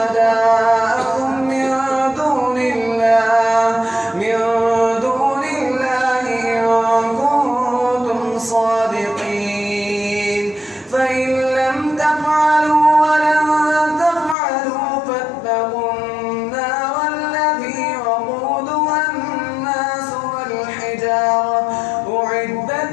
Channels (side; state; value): right; drops out; at 14.4 s